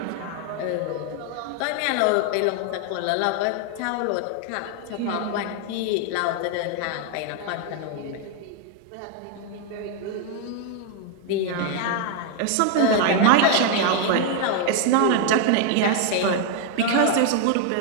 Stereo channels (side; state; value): both; different; correlation 0.00